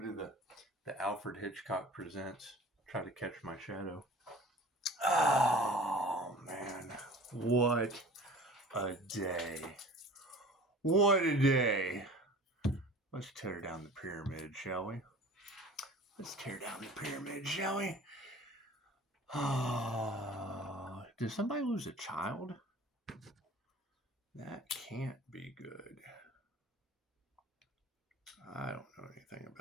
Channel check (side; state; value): both; normal; correlation 0.43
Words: did the Alfred Hitchcock Presents? Try to Catch My Shadow. Oh, man. What a day. What a day. Let's tear down the pyramid, shall we? Let's tear down the pyramid, shall we? Oh, did somebody lose a child? That can't be good. I don't know anything